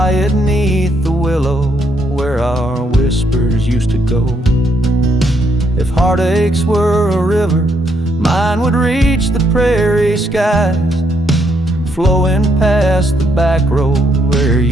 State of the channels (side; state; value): both; normal; correlation 0.74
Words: neath the willow where our whispers used to go. If heartaches were a river, Mine would reach the prairie skies, flowing past the back road where